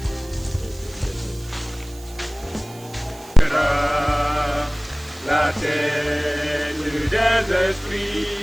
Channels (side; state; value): right; noise; hiss, 21 dB below the sound